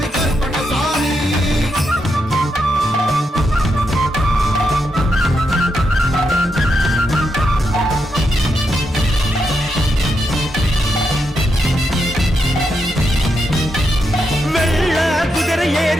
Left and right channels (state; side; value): normal; both; correlation 0.83